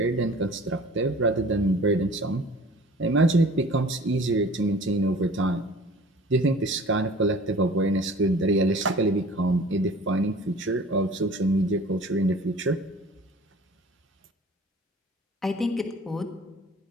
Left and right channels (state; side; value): normal; both; correlation 0.46